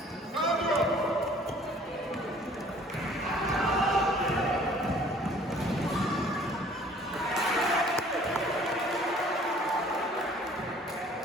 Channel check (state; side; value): normal; both; correlation 0.54